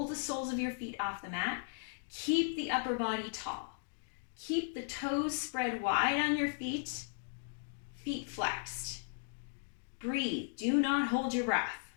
the soles of your feet off the mat. Keep the upper body tall. Keep the toes spread wide on your feet, feet flexed. Breathe, do not hold your breath.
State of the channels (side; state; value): right; silent; digital silence